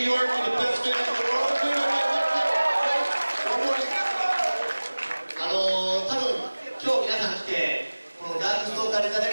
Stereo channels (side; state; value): both; inverted; correlation -1.00